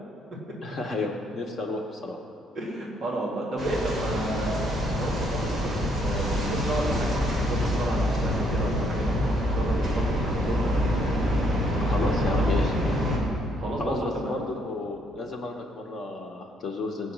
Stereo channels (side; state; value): both; normal; correlation 0.70